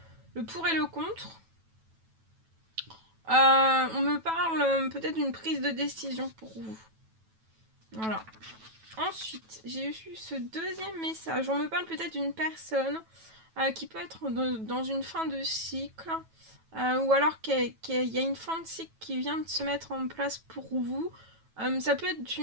pour et le contre, on me parle peut-être d'une prise de décision pour vous. Voilà. Ensuite, j'ai eu ce deuxième message. On me parle peut-être d'une personne qui peut être dans une fin de cycle ou alors qu'il y a une fin de cycle qui vient de se mettre en place pour vous. Ça peut être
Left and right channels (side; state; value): left; late; 9.1 ms